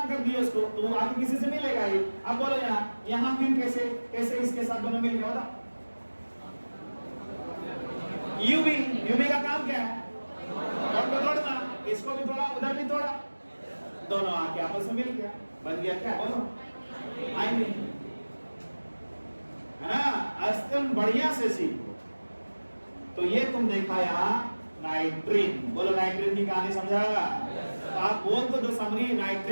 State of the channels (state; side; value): inverted; both; correlation -1.00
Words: कर दिया उसको, तो आगे किसी से मिलेगा ही। अब बोलो यहाँ फिर कैसे कैसे इसके साथ दोनों मिल गया? बताओ। यूवी का काम क्या है? तोड़ना, इसको भी तोड़ा, उधर भी तोड़ा, दोनों आके आपस में मिल गया, बन गया क्या? बोलो आएंगे है ना। अस्तम बढ़िया से सीखो। तो ये तुम देखा यहाँ नाइट्रीन। बोलो नाइट्रीन की कहानी समझाएगा? तो आप बोल तो दो समरी,